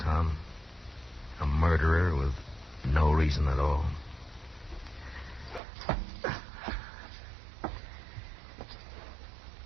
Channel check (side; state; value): left; drops out; at 5.6 s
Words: Tom. A murderer with no reason at all.